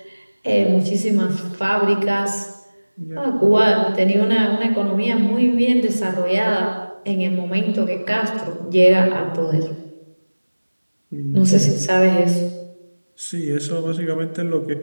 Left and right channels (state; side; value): inverted; both; correlation -1.00